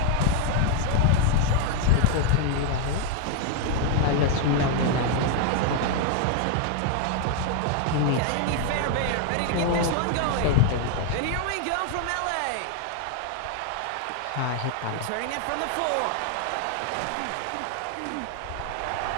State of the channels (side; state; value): both; different; correlation 0.00